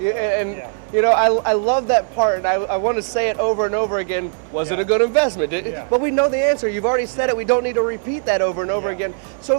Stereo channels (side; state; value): left; silent; 66 dB below the other